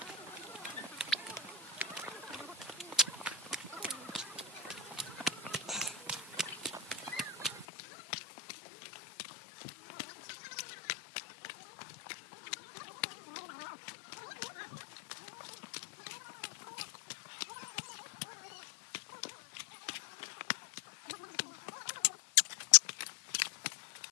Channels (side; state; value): right; drops out; at 7.7 s